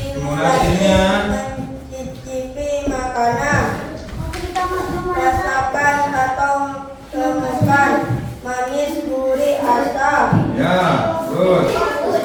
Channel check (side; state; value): both; identical; correlation 1.00